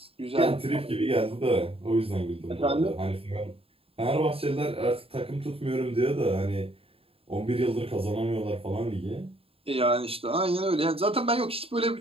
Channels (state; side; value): late; left; 0.27 ms